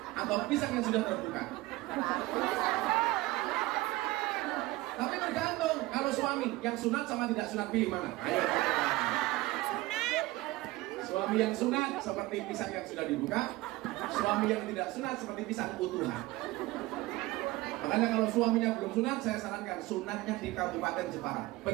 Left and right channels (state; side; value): quieter; left; 19.6 dB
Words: atau pisang yang sudah terbuka? Tapi tergantung. Kalau suami yang sunat sama tidak sunat, pilih mana? Ayo. Suami yang sunat seperti pisang yang sudah dibuka, suami yang tidak sunat seperti pisang utuhan. Makanya kalau suaminya belum sunat, saya sarankan sunatnya di Kabupaten Jepara.